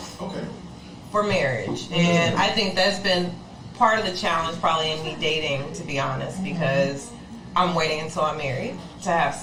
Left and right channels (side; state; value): both; identical; correlation 1.00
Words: for marriage. And I think that's been part of the challenge probably in me dating, to be honest, because I'm waiting until I'm married to have